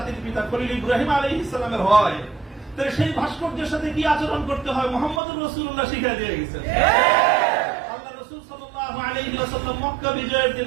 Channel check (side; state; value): left; drops out; at 5.2 s